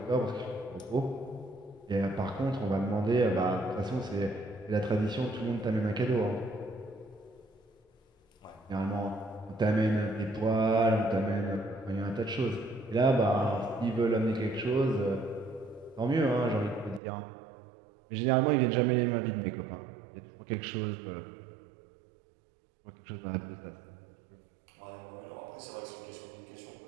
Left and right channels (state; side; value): drops out; left; at 17.0 s